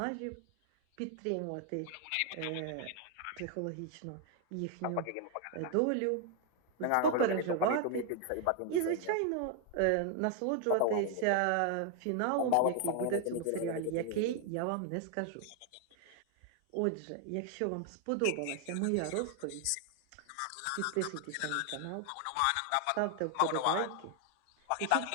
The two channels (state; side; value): different; both; correlation 0.00